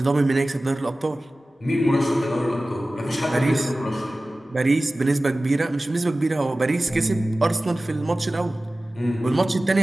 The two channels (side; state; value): both; normal; correlation 0.97